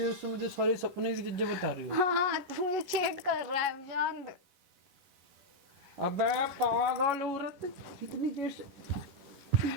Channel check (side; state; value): left; late; 11 ms